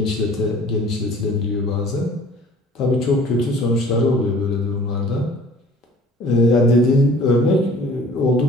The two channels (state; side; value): normal; both; correlation 0.50